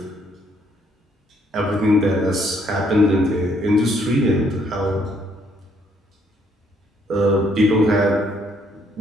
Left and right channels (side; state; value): both; normal; correlation 0.69